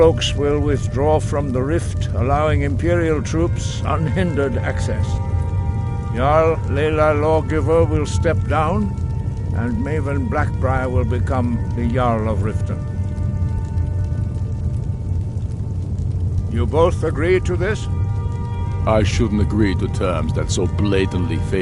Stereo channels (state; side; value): identical; both; correlation 1.00